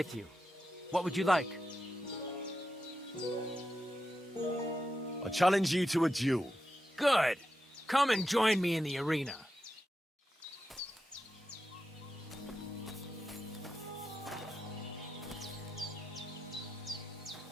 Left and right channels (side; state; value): both; normal; correlation 0.89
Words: you. What would you like? I challenge you to a duel. Good. Come and join me in the arena.